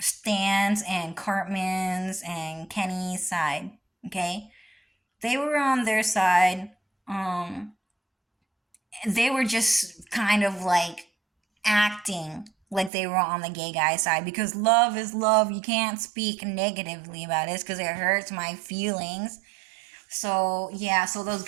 Stan's and Cartman's and Kenny's side. Okay? They were on their side. Um they were just kind of like acting like they were on the gay guy side because love is love. You can't speak negatively about it because it hurts my feelings. So, yeah, so those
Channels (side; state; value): left; drops out; at 12.9 s